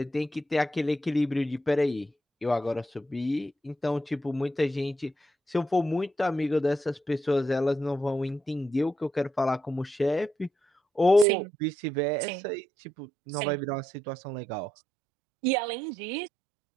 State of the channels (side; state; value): left; drops out; at 11.2 s